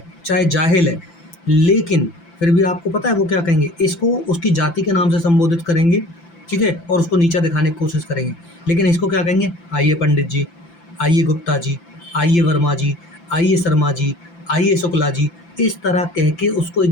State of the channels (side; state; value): right; late; 5.9 ms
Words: चाहे जाहिल है, लेकिन फिर भी आपको पता है वो क्या कहेंगे? इसको उसकी जाति के नाम से संबोधित करेंगे। ठीक है, और उसको नीचा दिखाने की कोशिश करेंगे। लेकिन इसको क्या कहेंगे? आइए पंडित जी, आइए गुप्ता जी, आइए वर्मा जी, आइए शर्मा जी, आइए शुक्ला जी, इस तरह कह के उसको